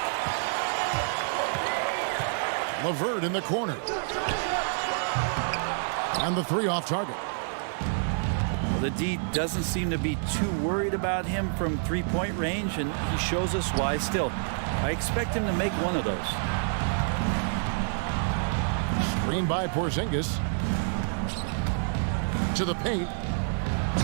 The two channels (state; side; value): silent; left; digital silence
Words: LeVert in the corner. And the 3 off target. Well, the D doesn't seem to be too worried about him from three-point range, and he shows us why still. I expect him to make one of those. Screen by Porzingis. To the paint.